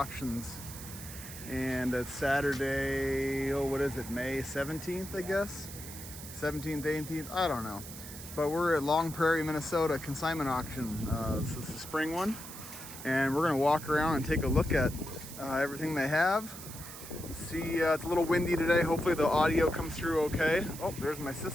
and it's Saturday. Oh, what is it? May 17th, I guess. 17th, 18th. I don't know. But we're at Long Prairie, Minnesota consignment auction. This is the spring one, and we're gonna walk around and take a look at everything they have. See, it's a little windy today. Hopefully the audio comes through okay. Oh, there's my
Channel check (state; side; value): noise; right; hiss, 12 dB below the sound